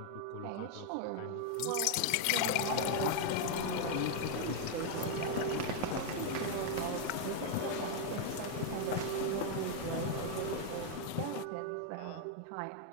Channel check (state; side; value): different; both; correlation 0.00